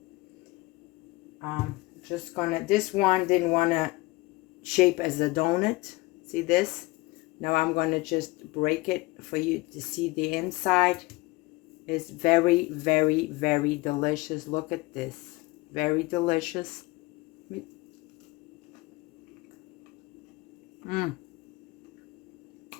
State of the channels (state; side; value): quieter; right; 22.1 dB